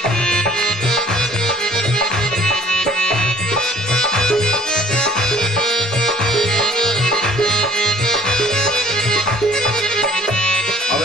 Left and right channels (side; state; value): both; normal; correlation 0.54